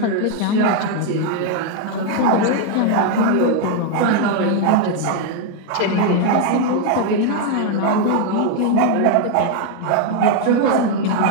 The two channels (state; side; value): different; both; correlation 0.00